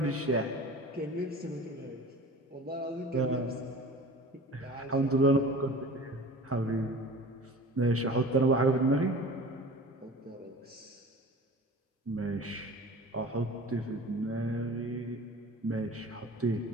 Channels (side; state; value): both; normal; correlation 0.39